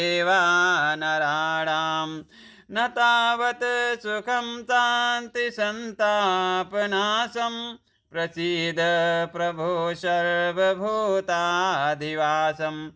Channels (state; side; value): identical; both; correlation 1.00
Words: नराणाम। न तावत् सुखं शांति संतापनाशम प्रसीद प्रभो सर्वभूताधिवासम।